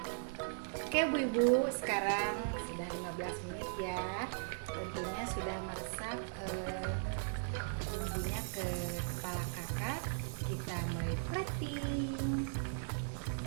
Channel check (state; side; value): silent; left; digital silence